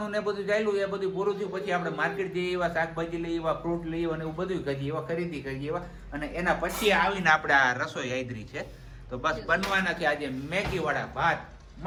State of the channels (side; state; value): both; identical; correlation 1.00